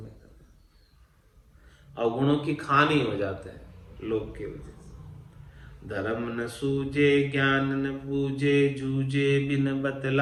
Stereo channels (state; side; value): identical; both; correlation 1.00